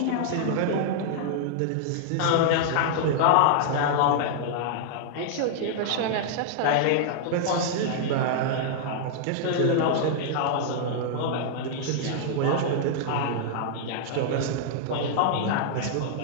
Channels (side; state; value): both; different; correlation -0.01